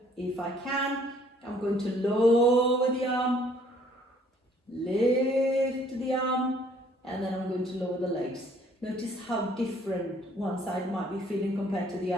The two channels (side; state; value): both; normal; correlation 0.61